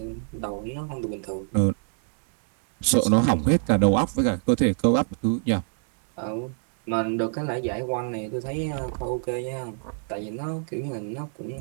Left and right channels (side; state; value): left; silent; 61 dB below the other